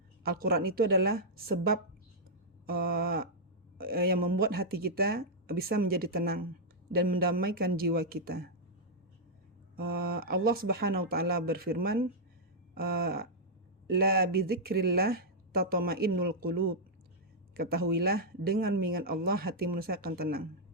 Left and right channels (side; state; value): both; normal; correlation -0.06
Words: Al-Quran itu adalah sebab yang membuat hati kita bisa menjadi tenang dan mendamaikan jiwa kita. Allah Subhanahu wa taala berfirman, la bidzikrillah tatma'innul qulub. Ketahuilah dengan mengingat Allah hati manusia akan tenang.